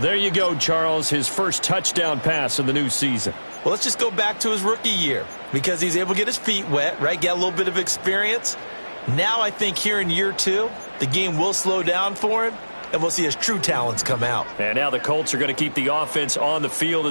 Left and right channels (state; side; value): inverted; both; correlation -1.00